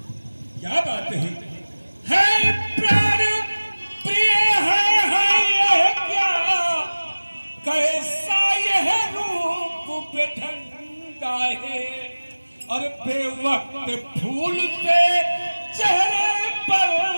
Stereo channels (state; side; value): inverted; both; correlation -1.00